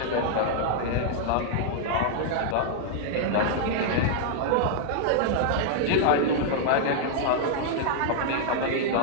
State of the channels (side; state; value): both; different; correlation -0.01